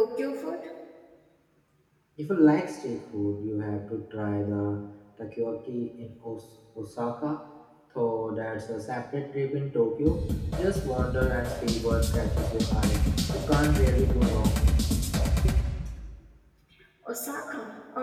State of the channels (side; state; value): both; identical; correlation 1.00